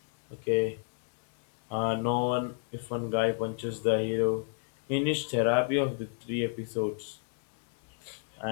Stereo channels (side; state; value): right; silent; 57 dB below the other